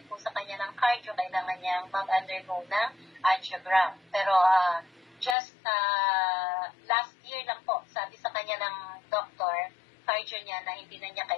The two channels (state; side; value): drops out; right; at 5.4 s